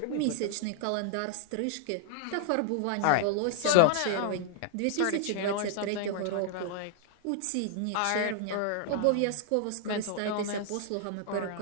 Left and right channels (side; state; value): both; different; correlation 0.00